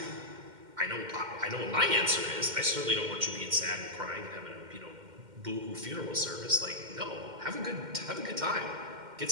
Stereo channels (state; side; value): late; left; 2.1 ms